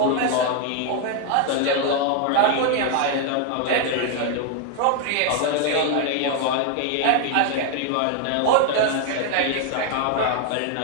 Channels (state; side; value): different; both; correlation 0.01